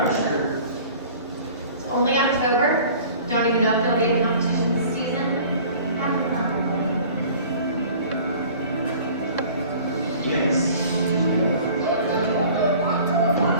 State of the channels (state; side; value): inverted; both; correlation -0.47